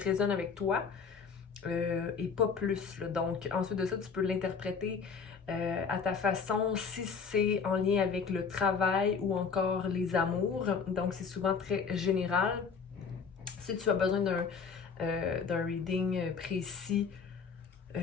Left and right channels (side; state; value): right; quieter; 5.7 dB